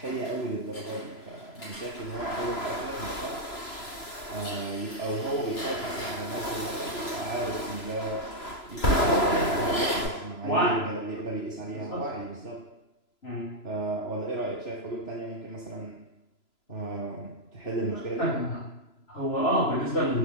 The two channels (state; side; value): late; right; 3.0 ms